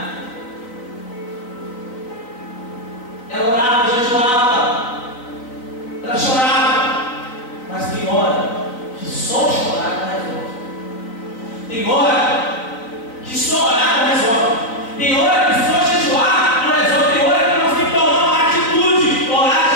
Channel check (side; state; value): right; late; 4.0 ms